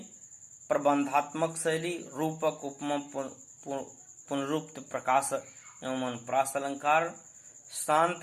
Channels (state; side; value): identical; both; correlation 1.00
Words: प्रबंधात्मक शैली, रूपक उपमा पुनरुक्त प्रकाश एवं अनुप्रास अलंकार,